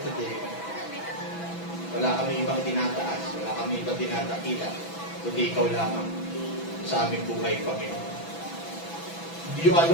Wala kami ibang tinataas, wala kami ibang tinatakila, kundi ikaw lamang sa aming buhay, Panginoon. You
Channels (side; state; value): right; late; 6.0 ms